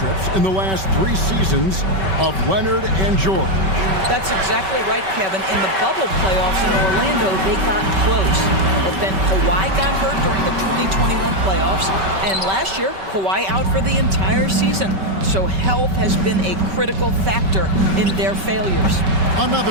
in the last 3 seasons of Leonard and George. That's exactly right, Kevin. In the bubble playoffs in Orlando, they got close. But then Kawhi got hurt during the 2021 playoffs, and last year, Kawhi out for the entire season. So health has been a critical factor in their failures.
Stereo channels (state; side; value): late; left; 5.2 ms